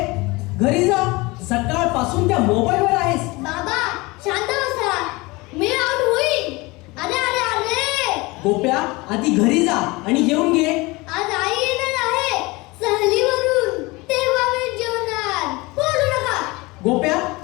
घरी जा. सकाळपासून त्या मोबाईलवर आहेस. बाबा शांत बसा. मी आउट होईल. अरे अरे अरे. गोप्या आधी घरी जा आणि जेवून घे. आज आई येणार आहे सहलीवरून. तेव्हा मी जेवणार. बोलू नका. गोप्या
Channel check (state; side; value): quieter; right; 23.4 dB